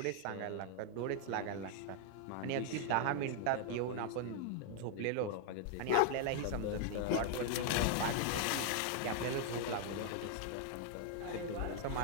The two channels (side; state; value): both; different; correlation 0.00